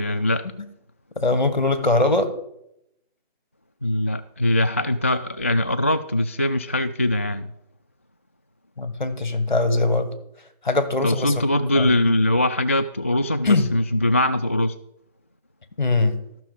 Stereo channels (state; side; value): inverted; both; correlation -0.60